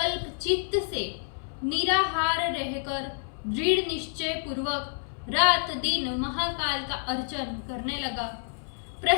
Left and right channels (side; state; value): right; silent; 59 dB below the other